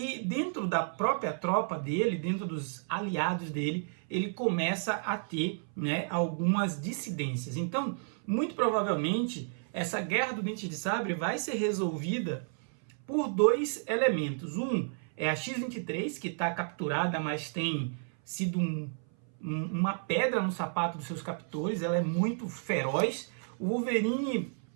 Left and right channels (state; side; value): silent; left; 57 dB below the other